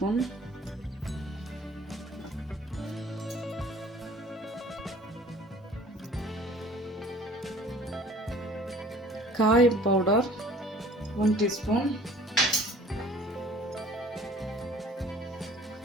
காயம் பவுடர் 1 டீஸ்பூன்,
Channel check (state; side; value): normal; both; correlation 0.51